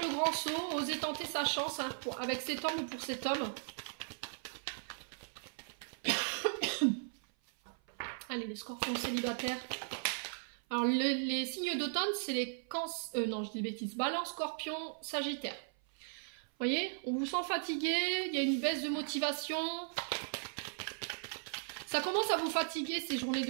grand saut, oser tenter sa chance hein, avec cet homme ou pour cet homme. Allez, les scorpions célibataires. Alors, les signes d'automne, c'est les cancers... non, je dis bêtises. Balance, scorpion, sagittaire. Vous voyez, on vous sent fatigué, il y a une baisse de motivation. Ça commence à vous fatiguer ces journées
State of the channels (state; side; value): silent; left; 53 dB below the other